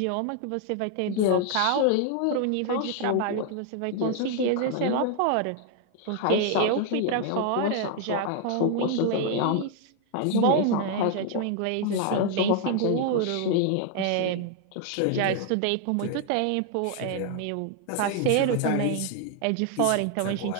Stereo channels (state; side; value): different; both; correlation 0.00